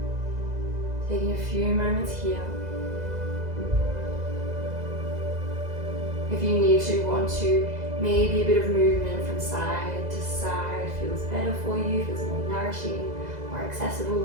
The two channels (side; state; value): left; late; 2.0 ms